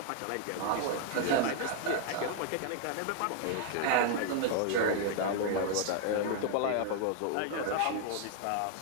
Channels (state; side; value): different; both; correlation 0.00